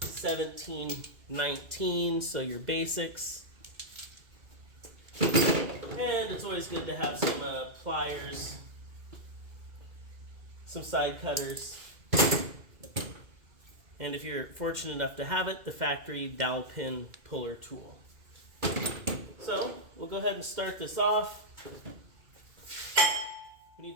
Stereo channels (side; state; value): left; late; 2.3 ms